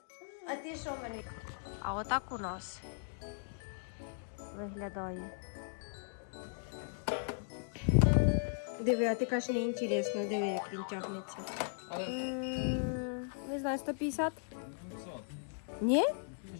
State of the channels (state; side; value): silent; right; digital silence